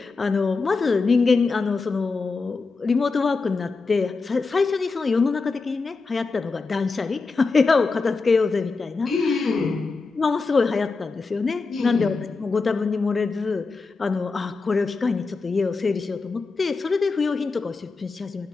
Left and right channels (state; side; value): quieter; right; 4.2 dB